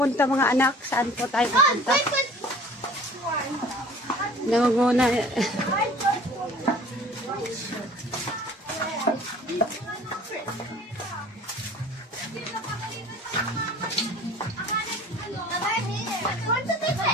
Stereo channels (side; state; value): both; normal; correlation 0.47